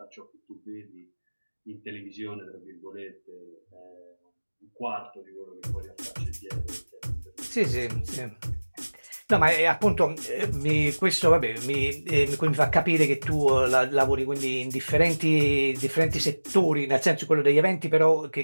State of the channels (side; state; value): both; inverted; correlation -1.00